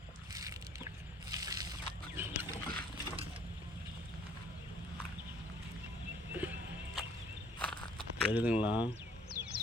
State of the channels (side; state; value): both; normal; correlation 0.59